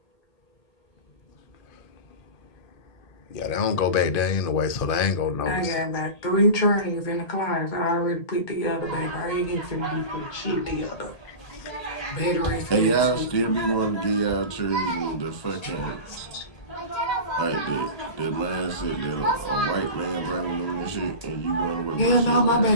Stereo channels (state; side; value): late; right; 1.8 ms